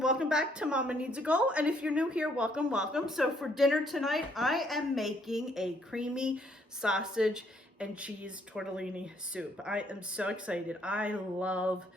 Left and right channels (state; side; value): normal; both; correlation 0.68